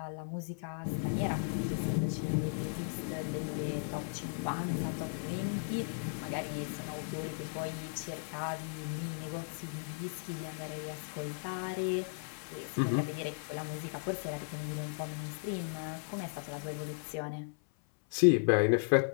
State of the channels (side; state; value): right; silent; 54 dB below the other